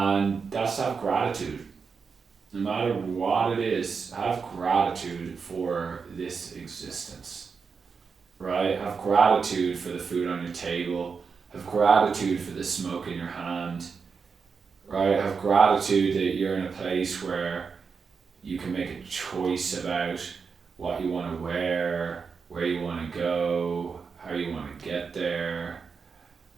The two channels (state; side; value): quieter; left; 5.5 dB